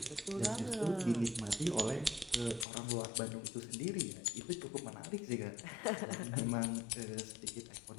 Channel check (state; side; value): drops out; right; at 2.7 s